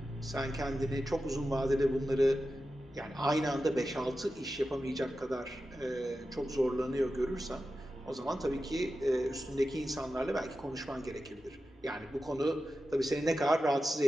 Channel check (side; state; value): both; normal; correlation 0.92